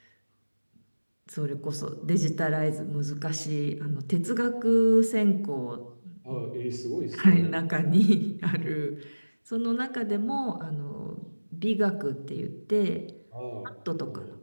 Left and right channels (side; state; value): both; inverted; correlation -1.00